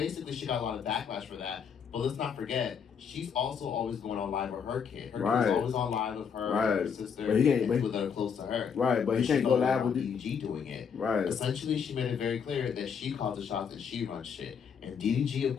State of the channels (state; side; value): quieter; right; 6.8 dB